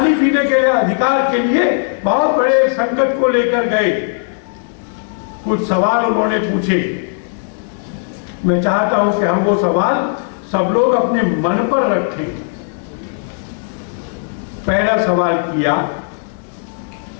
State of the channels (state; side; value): silent; right; digital silence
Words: पीने के अधिकार के लिए बहुत बड़े संकट को लेकर गए। कुछ सवाल उन्होंने पूछे, मैं चाहता हूं कि हम वो सवाल सब लोग अपने मन पर रखें। पहला सवाल किया,